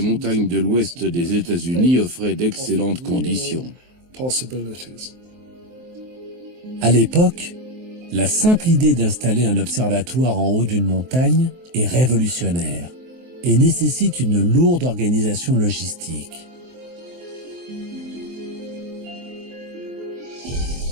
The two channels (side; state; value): left; late; 23 ms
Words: de l'ouest des États-Unis offraient d'excellentes conditions. À l'époque, la simple idée d'installer un observatoire en haut d'une montagne est révolutionnaire et nécessite une lourde organisation logistique.